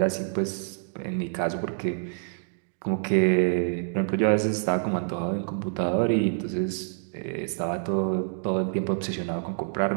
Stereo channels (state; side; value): silent; left; digital silence